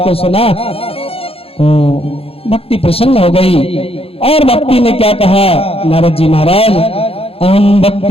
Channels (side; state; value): right; late; 0.28 ms